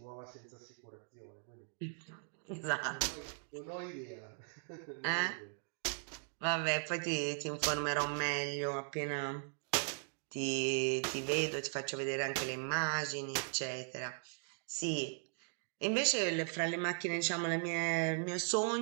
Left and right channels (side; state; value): left; silent; 52 dB below the other